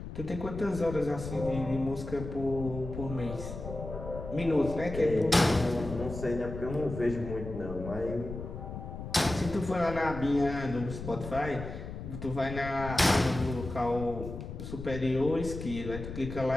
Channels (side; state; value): left; noise; rumble, 8 dB below the sound